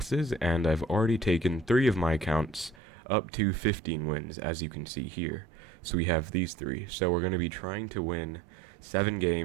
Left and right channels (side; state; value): left; drops out; at 2.8 s